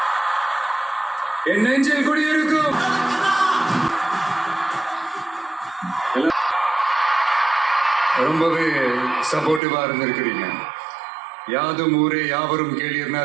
என் நெஞ்சில் குடியிருக்கும் ரொம்பவே சப்போர்ட்டிவா இருந்திருக்கிறீங்க. யாதும் ஊரே யாவரும் கேள்வினா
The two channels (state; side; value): drops out; left; at 9.6 s